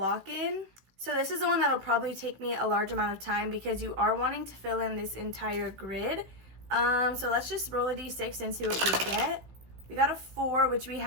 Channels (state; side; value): late; left; 16 ms